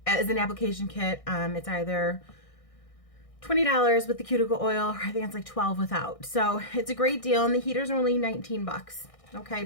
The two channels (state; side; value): late; right; 1.6 ms